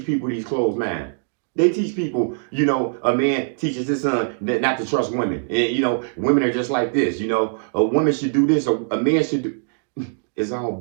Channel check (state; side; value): silent; left; digital silence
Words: people these closed minds. They teach people, a man teaches his son not to trust women. And, women are just like this. A woman should do this. A man should do. It's all